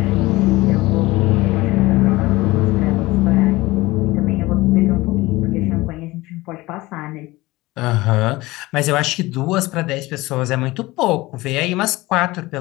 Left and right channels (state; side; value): quieter; right; 20.0 dB